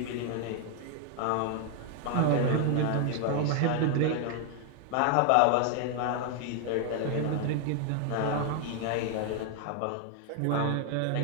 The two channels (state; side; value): different; both; correlation 0.00